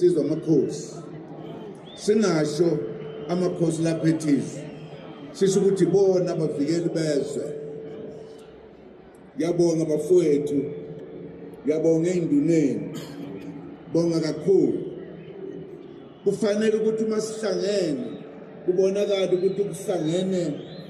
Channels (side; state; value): both; identical; correlation 1.00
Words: amakhosi singasho amakhosi lapha ethizwe sisho ukuthi bona abavikeli bezwe yabonga bafowethu yabonga enduneni bonga kakhulu kufanele ukuthi uma sihlangene kubonakala ukuthi kuhlangene